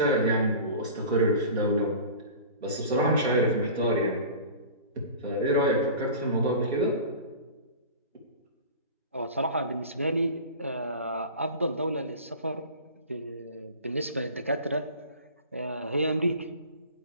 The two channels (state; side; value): inverted; both; correlation -0.37